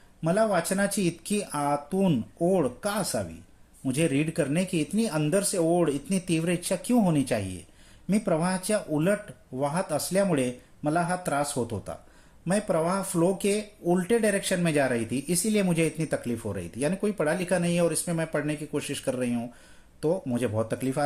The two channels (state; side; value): identical; both; correlation 1.00